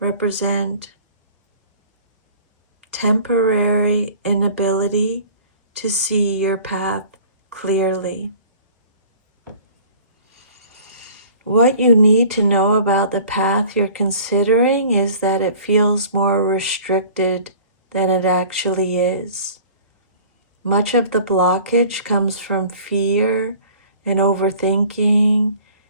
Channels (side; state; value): both; inverted; correlation -0.47